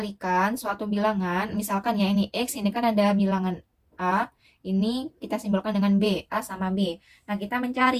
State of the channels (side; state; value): both; identical; correlation 1.00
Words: suatu bilangan, misalkan ya ini x, ini kan ada bilangan A, ini kita simbolkan dengan B, A sama B. Nah, kita